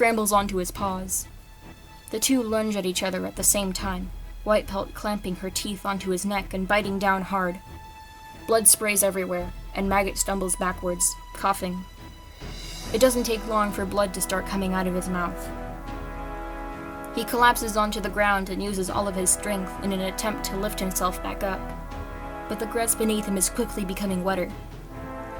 onto his paws. The two lunge at each other at the same time, White Pelt clamping her teeth onto his neck and biting down hard. Blood sprays everywhere, and Maggot stumbles backwards, coughing. It doesn't take long for blood to start coming out of his mouth. He collapses onto the ground and uses all of his strength in an attempt to lift himself back up, but the grass beneath him is quickly becoming wetter.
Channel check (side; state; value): both; identical; correlation 1.00